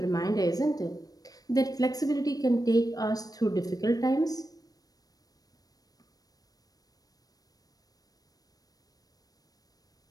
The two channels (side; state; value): right; late; 0.18 ms